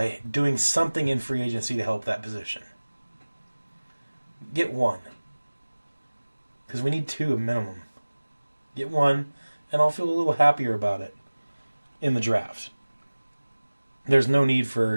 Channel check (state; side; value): inverted; both; correlation -1.00